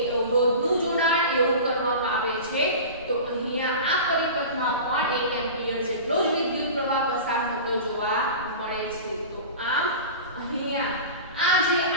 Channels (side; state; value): both; inverted; correlation -0.33